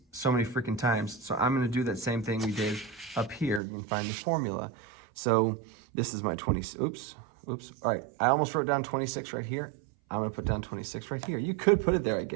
so many freaking times. So I'm going to do that same thing we did up here. You can find the formula. So this is my 20, oops. All right, I almost wrote down 26 right here. I'm going to put down 26 right here. You could put it there, I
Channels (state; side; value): drops out; left; at 3.6 s